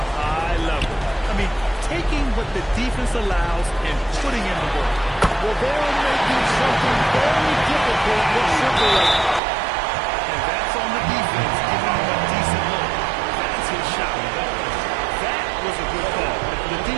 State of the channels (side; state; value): left; drops out; at 9.4 s